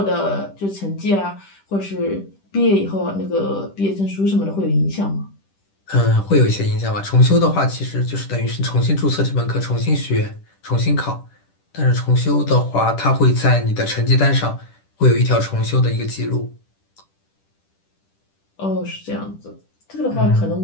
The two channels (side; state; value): right; late; 10 ms